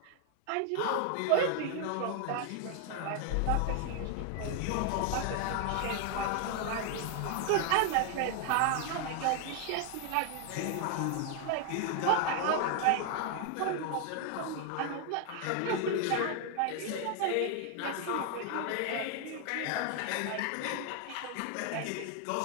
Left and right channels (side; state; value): both; different; correlation 0.00